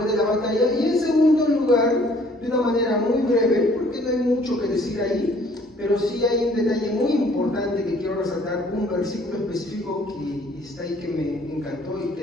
de la batalla. Y en segundo lugar, de una manera muy breve, porque no hay mucho que decir ahí, pero sí hay un detalle muy importante que quiero resaltar, un versículo específico que está ahí que me encantó y que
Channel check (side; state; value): both; normal; correlation 0.58